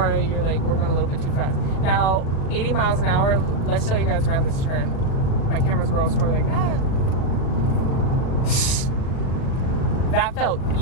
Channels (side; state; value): right; late; 37 ms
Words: you're like, we're going a little bit too fast. Now, 80 miles an hour, let's show you guys around this turn. My camera's girls were like, ah. That felt